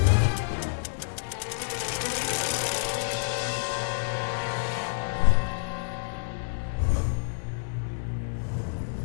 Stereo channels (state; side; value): silent; right; digital silence